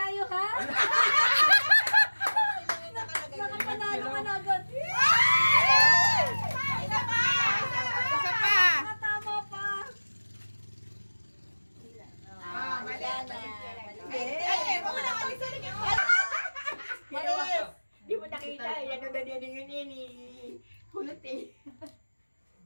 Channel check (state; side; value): inverted; both; correlation -1.00